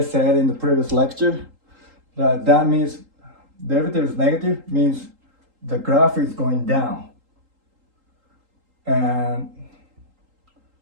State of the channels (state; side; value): late; left; 3.8 ms